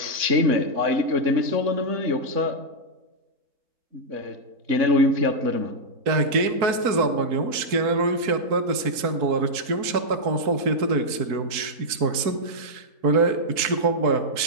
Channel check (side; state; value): left; late; 4.5 ms